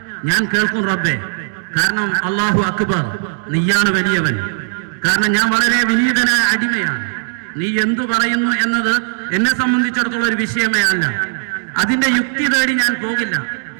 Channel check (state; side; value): silent; left; digital silence